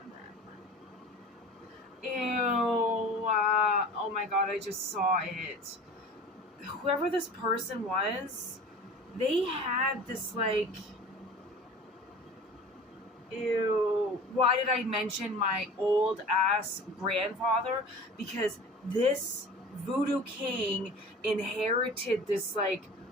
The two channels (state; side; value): normal; both; correlation 0.40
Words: them. Ew. Oh my God, I just saw it. Whoever this person was, they had this like, ew. Why did I mention my old ass grandfather? Because this voodoo king inherited this like